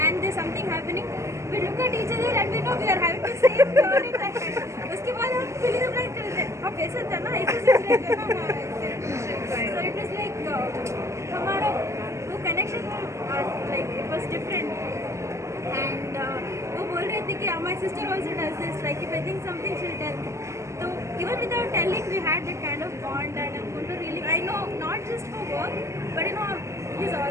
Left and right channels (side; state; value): left; late; 0.14 ms